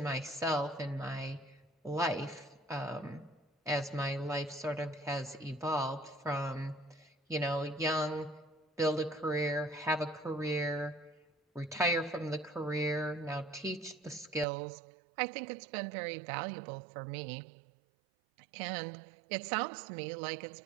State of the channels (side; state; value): left; drops out; at 14.5 s